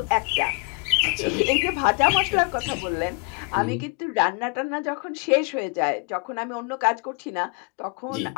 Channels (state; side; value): quieter; right; 33.5 dB